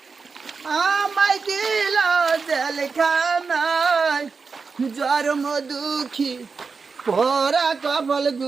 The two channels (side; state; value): left; quieter; 4.9 dB